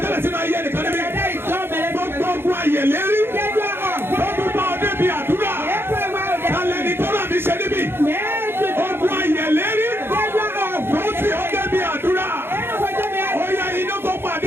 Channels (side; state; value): left; late; 0.11 ms